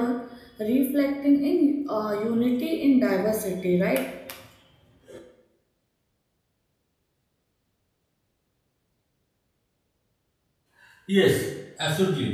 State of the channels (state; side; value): identical; both; correlation 1.00